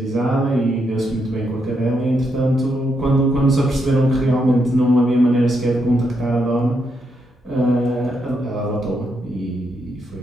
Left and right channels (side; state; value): both; normal; correlation 0.80